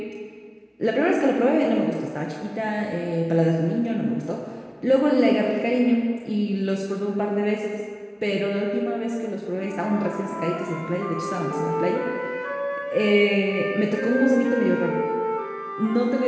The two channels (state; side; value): identical; both; correlation 1.00